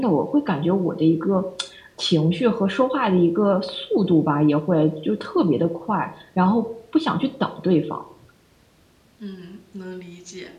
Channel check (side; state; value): both; identical; correlation 1.00